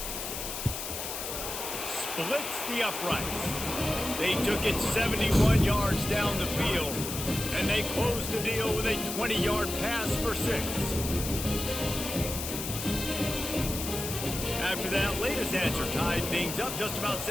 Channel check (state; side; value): noise; left; hiss, 5 dB below the sound